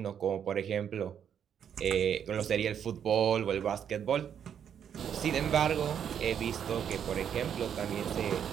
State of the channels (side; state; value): left; quieter; 8.5 dB